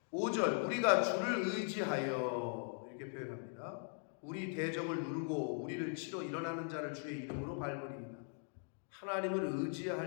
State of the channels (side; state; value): right; silent; 51 dB below the other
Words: 5절 우리가 주를 의지하여 이렇게 표현합니다. 우리 대적을 누르고 우리를 치러 일어나는 자를 주의 이름으로 밟으리이다. 하나님을